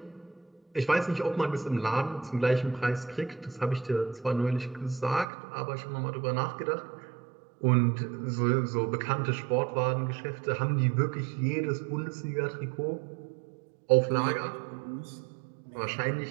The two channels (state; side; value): drops out; left; at 5.2 s